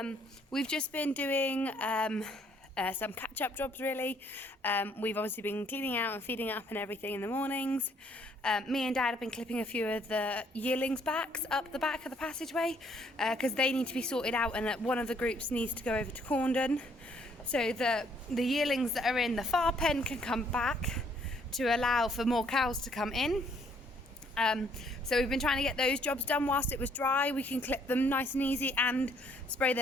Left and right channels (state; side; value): normal; both; correlation 0.66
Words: we've just been doing some catch-up jobs really. We've obviously been cleaning out and feeding up and everything in the mornings. Me and Dad have been clipping a few of the yearlings' backs up the back of the passageway because they need to be sorted out, and one of the groups needs to go over to Corndon so that the yearlings that are in the far pen can come back to allow for more cows to come in. So we've been trying to get those jobs done whilst it was dry. We can clip them nice and easy and spray